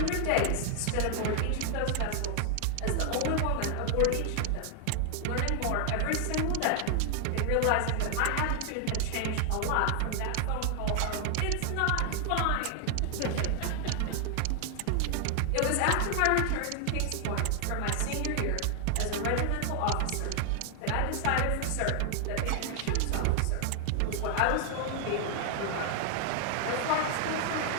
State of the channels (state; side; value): different; both; correlation 0.00